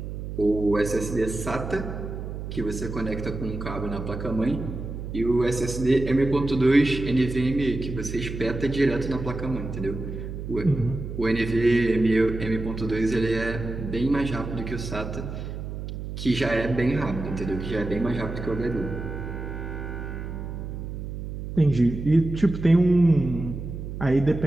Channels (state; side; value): noise; right; hum, 7 dB below the sound